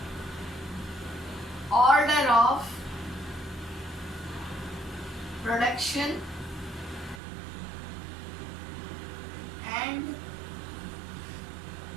Order of production and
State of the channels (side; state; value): left; drops out; at 7.2 s